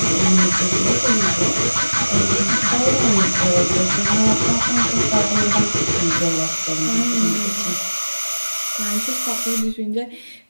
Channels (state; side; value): inverted; both; correlation -1.00